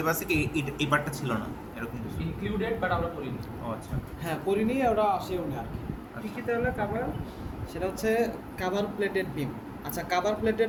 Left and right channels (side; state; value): both; identical; correlation 1.00